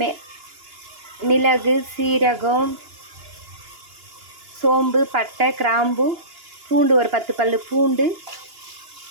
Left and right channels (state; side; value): late; left; 2.9 ms